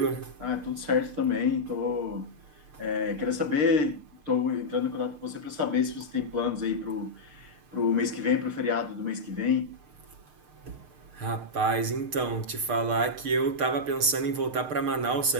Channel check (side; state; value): left; late; 6.6 ms